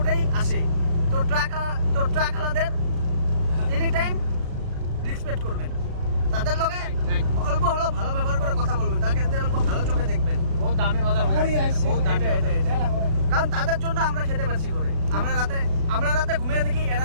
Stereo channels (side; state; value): left; late; 36 ms